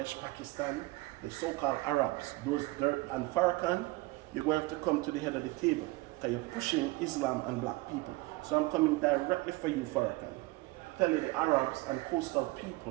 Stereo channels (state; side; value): quieter; left; 21.4 dB